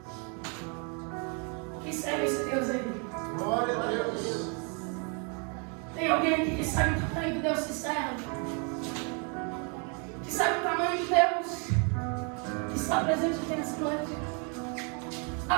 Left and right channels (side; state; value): left; quieter; 36.6 dB